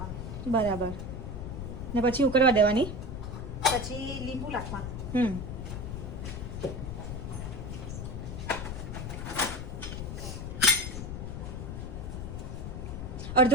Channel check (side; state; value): left; noise; rumble, 6 dB below the sound